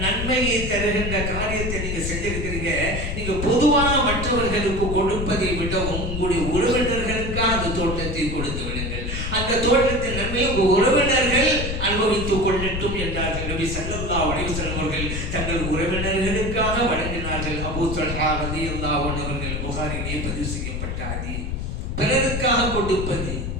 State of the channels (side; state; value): left; noise; rumble, 3 dB below the sound